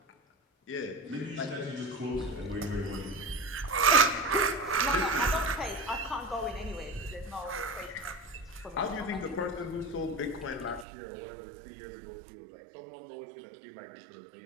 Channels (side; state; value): left; drops out; at 10.9 s